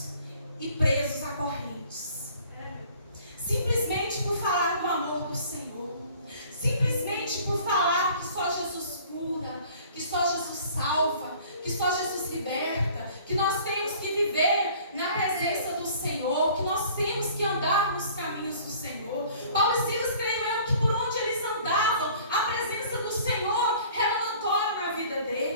e presos a correntes. Simplesmente por falar do amor do Senhor. Simplesmente por falar que só Jesus cura, que só Jesus salva, que só Jesus liberta, que nós temos que viver na presença do Senhor, que nós temos que andar nos caminhos do Senhor. Paulo e Silas, creio eu, que por onde eles andavam, a presença do Senhor era notória na vida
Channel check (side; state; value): both; inverted; correlation -0.51